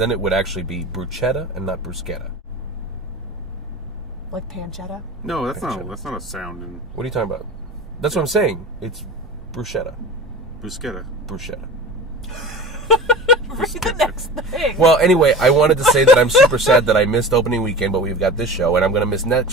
it would actually be bruschetta and not bruschetta. Like pancetta. No, that's not a sound in What are you talking about? That's what I'm saying. It's bruschetta. bruschetta. Bruschetta. Read the next thing. Well, anyway, I wanted to say that I'm super sad that I missed opening weekend, but we've got this show, and I'm going to miss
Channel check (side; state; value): both; normal; correlation 0.35